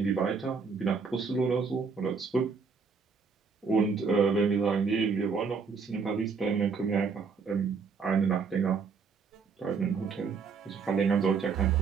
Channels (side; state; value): left; quieter; 5.3 dB